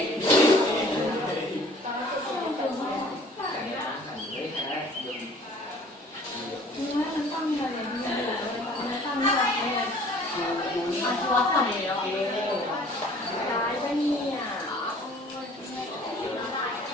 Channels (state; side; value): normal; both; correlation 0.51